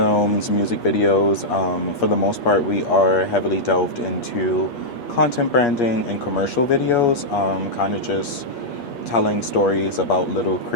music videos. For the most part, we are heavily delved into content branding and commercial videos, kind of just telling stories about little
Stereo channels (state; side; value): late; right; 8.5 ms